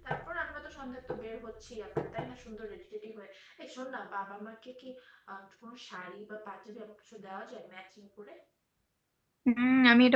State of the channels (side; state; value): both; identical; correlation 1.00